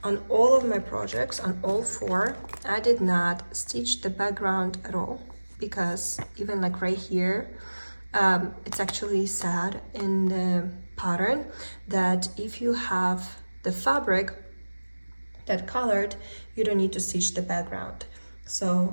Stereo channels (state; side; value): inverted; both; correlation -1.00